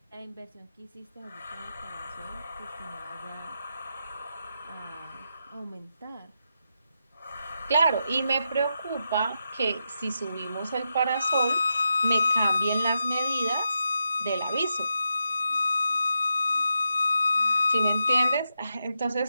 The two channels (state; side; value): inverted; both; correlation -0.86